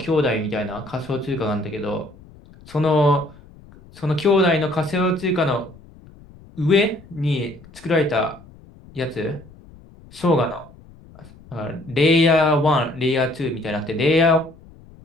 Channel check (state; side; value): noise; left; rumble, 23 dB below the sound